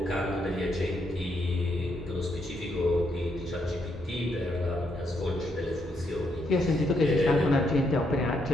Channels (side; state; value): both; normal; correlation 0.77